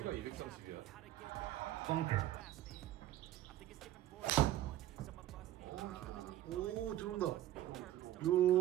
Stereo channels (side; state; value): left; quieter; 13.7 dB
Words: 230이야. 오, 들어온다. 요,